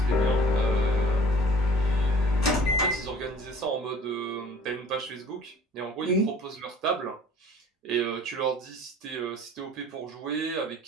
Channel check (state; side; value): normal; both; correlation 0.48